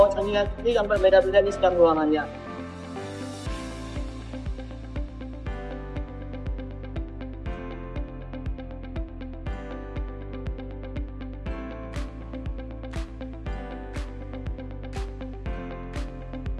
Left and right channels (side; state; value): both; identical; correlation 1.00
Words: saringan yang berbeda-beda di setiap ruangannya.